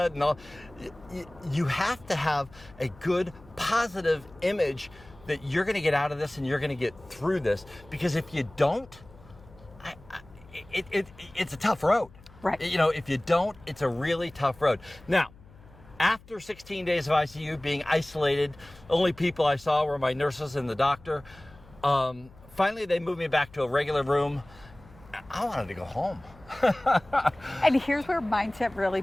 and all. You have to have a good, positive image that you're going to get out of this and you're going to get through this. Because if you don't, it's a tough road. Right. You know, if you don't, it's a really tough road. Now, after 16 days of ICU, being isolated, the only people I saw were my nurses and the doctor. Finally, they moved me back to a regular room. I wanted to go home. And here's where mindset really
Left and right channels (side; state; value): left; noise; hum, 23 dB below the sound